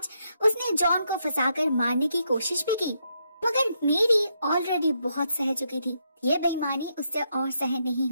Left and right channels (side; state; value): both; inverted; correlation -0.78